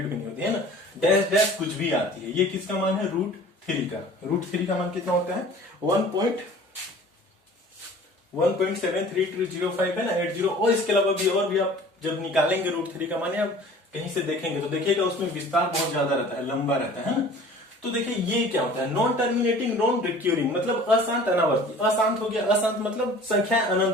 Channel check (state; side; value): normal; both; correlation 0.46